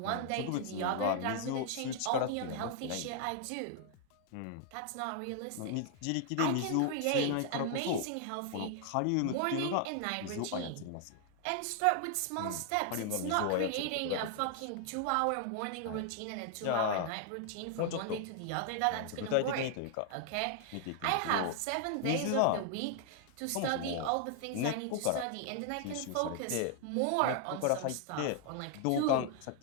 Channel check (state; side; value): different; both; correlation 0.00